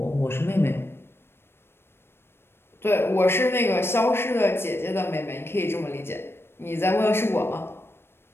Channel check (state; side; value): late; right; 0.12 ms